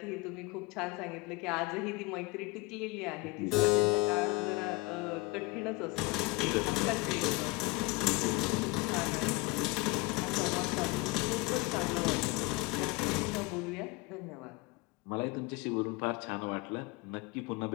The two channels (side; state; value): right; quieter; 24.0 dB